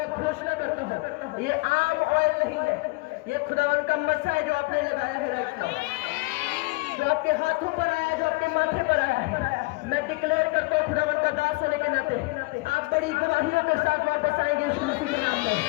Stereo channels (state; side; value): quieter; right; 24.5 dB